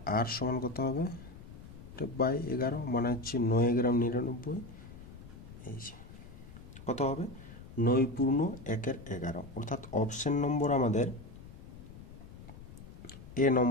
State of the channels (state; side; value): noise; left; rumble, 16 dB below the sound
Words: আর সমান কত হবে? এটা বাই 11 মানে হচ্ছে 9 গ্রাম 99। এই যে কত হবে? 9 পূর্ণ 1-এর 11, অর্থাৎ অপশন নম্বর আমাদের এ